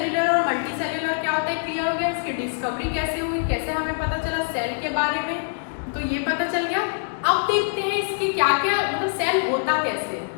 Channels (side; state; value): right; silent; digital silence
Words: और मल्टी सेल्यूलर क्या होता है, क्लियर हो गया। इसकी डिस्कवरी कैसे हुई, कैसे हमें पता चला सेल के बारे में, तो ये पता चल गया। अब देखते हैं इसके क्या क्या, मतलब सेल होता कैसे।